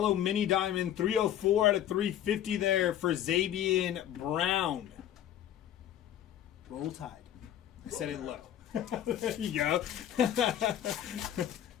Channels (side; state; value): right; quieter; 11.1 dB